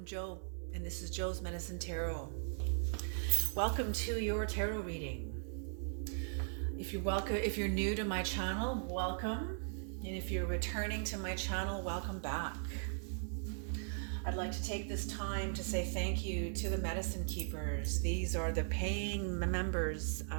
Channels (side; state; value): left; silent; digital silence